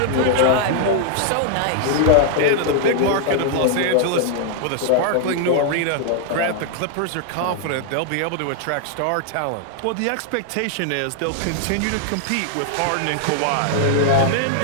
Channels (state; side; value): different; both; correlation 0.00